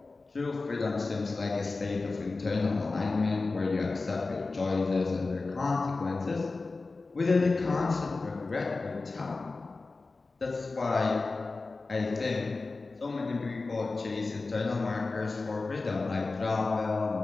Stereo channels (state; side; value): quieter; right; 3.7 dB